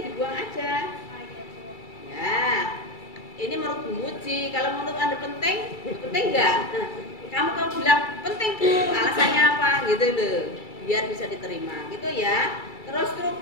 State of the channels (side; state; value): right; late; 2.3 ms